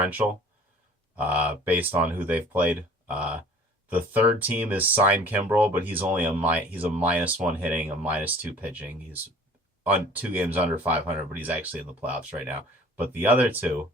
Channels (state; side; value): normal; both; correlation 0.49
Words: based on who they've played. The 3rd team is Sign Kimbrel, but he's only he's a -1 hitting, a -2 pitching. He's on 2 games under 500, but he's actually in the playoffs right now. But the other 2